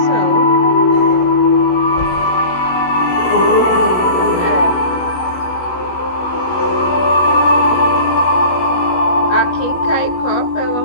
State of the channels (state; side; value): late; right; 16 ms